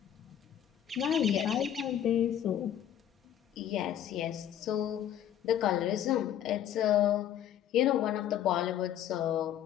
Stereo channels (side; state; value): right; quieter; 10.6 dB